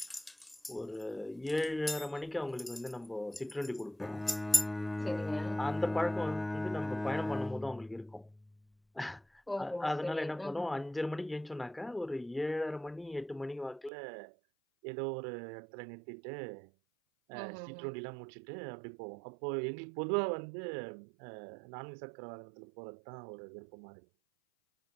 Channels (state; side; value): drops out; left; at 13.9 s